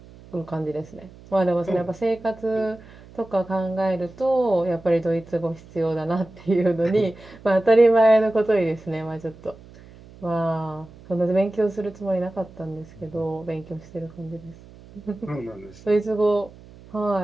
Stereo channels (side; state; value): right; noise; hum, 21 dB below the sound